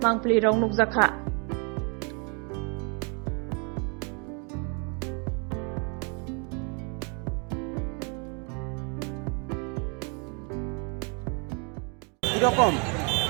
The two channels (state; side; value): quieter; left; 35.8 dB